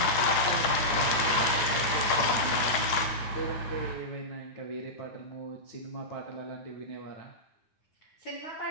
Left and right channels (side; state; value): right; late; 10 ms